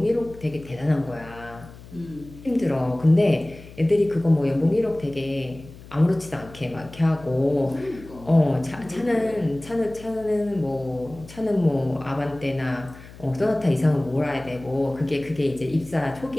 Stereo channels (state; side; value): noise; left; hum, 18 dB below the sound